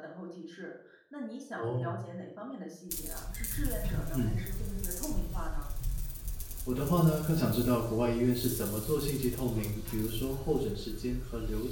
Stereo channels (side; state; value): both; identical; correlation 1.00